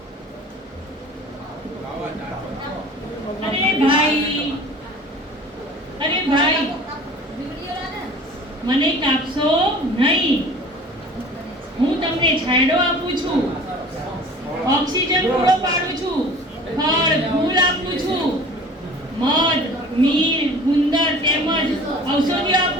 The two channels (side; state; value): both; normal; correlation 0.44